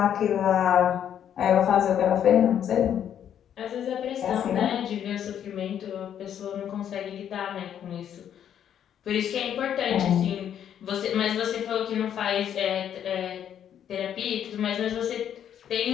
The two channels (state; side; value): quieter; right; 9.5 dB